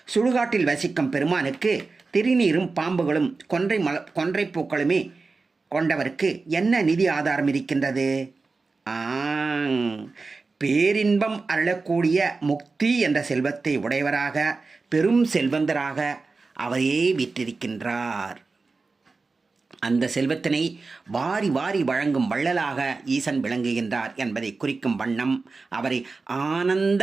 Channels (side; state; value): left; quieter; 4.0 dB